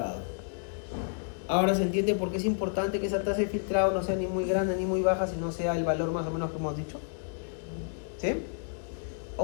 Ahora se entiende por qué es importante que esa tasa de filtrado no sea ni muy grande ni muy baja, sino sea el valor más o menos que hemos dicho. ¿Sí?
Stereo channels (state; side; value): silent; right; digital silence